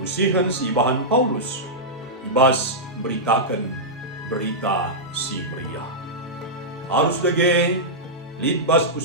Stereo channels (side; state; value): both; normal; correlation -0.11